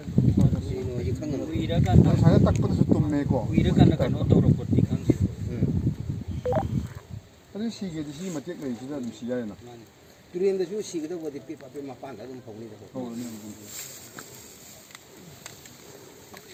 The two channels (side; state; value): both; identical; correlation 1.00